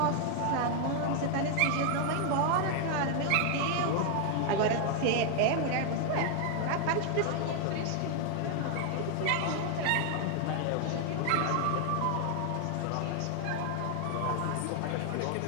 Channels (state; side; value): different; both; correlation 0.00